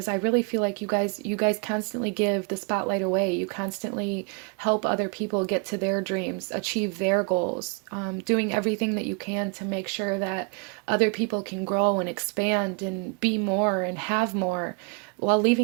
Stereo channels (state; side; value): quieter; left; 35.8 dB